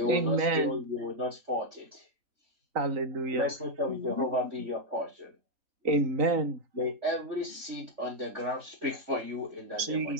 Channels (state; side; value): late; left; 3.9 ms